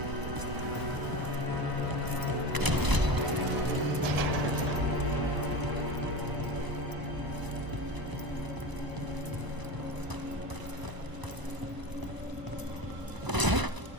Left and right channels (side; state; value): left; late; 1.0 ms